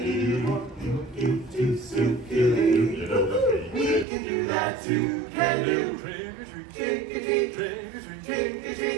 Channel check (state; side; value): drops out; left; at 4.0 s